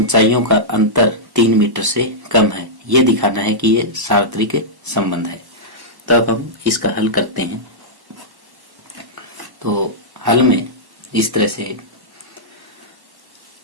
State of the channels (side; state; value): left; late; 1.1 ms